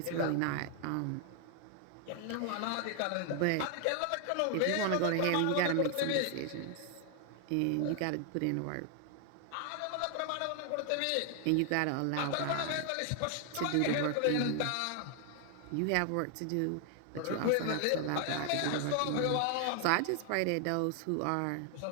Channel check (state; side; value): different; both; correlation 0.00